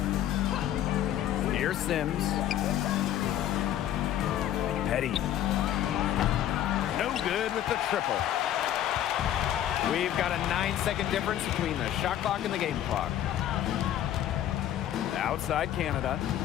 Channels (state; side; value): quieter; right; 11.6 dB